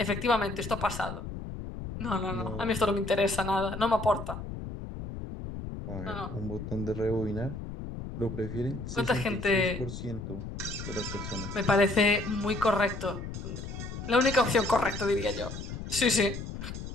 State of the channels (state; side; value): noise; left; rumble, 8 dB below the sound